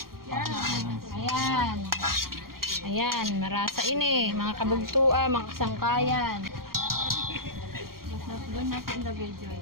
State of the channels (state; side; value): late; left; 0.93 ms